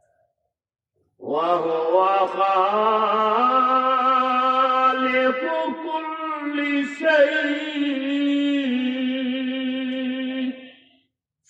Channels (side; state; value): both; identical; correlation 1.00